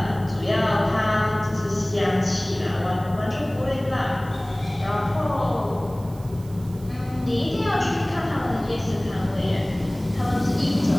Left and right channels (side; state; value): right; noise; hiss, 24 dB below the sound